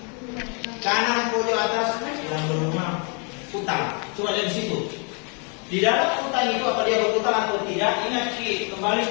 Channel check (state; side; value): quieter; right; 36.2 dB